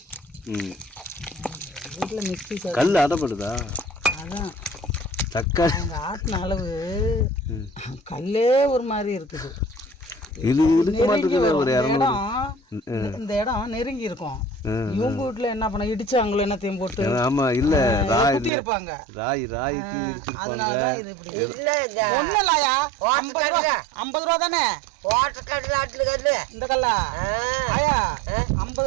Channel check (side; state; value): left; drops out; at 18.5 s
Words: வீட்டில் மிக்சி கல் அடப்படுதா? அதான் தக்காளி ஆட்டின அளவு கல்லே ஒரு மாதிரி இருக்குது. இது இருக்க மாட்டேங்குது. ஒரு 200 இந்த இடம் நெருங்கி இருக்கும். இவங்க வீட்டுல என்ன பண்ண இடிச்சாங்களோ என்னத்தையும் போட்டு. ஆமா இல்ல ராய் இருப்பாங்க, ராய்க்கு இடிச்சிருப்பாங்க. ஒண்ணு இல்லையா, 50 ரூபா தானே இந்த கல்லா ஆயா,